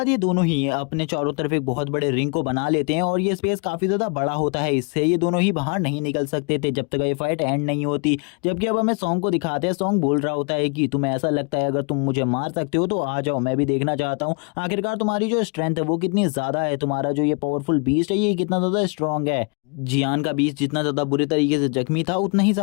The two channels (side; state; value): right; quieter; 36.4 dB